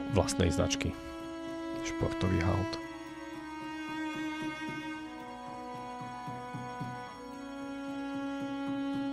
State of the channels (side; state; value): both; identical; correlation 1.00